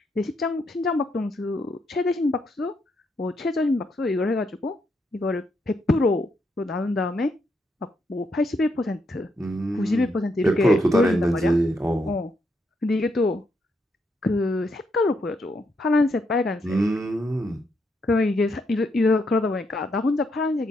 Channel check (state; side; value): normal; both; correlation 0.78